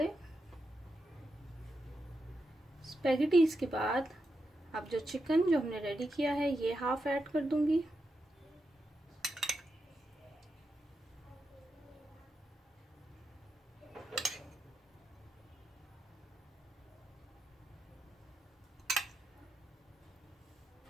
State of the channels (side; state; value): both; normal; correlation 0.86